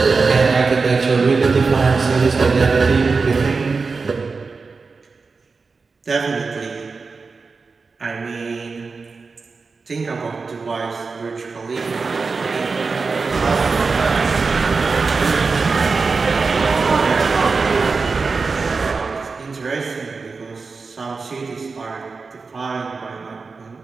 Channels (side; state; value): left; quieter; 4.4 dB